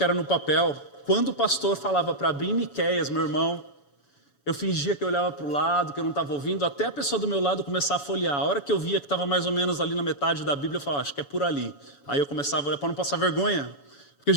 era no papel. Quando o pastor falava para abrir Miqueias, meu irmão, eu fingia que eu olhava para o lado, que eu não estava ouvindo, até a pessoa do meu lado começar a folhear. A hora que eu via que estava mais ou menos ali na metade da Bíblia, eu falava, acho que é por ali. Aí eu começava a olhar para não passar vergonha, porque a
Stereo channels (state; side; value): late; right; 7.1 ms